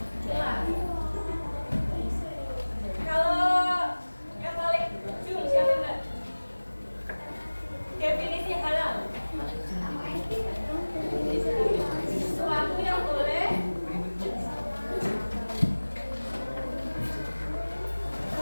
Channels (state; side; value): inverted; both; correlation -1.00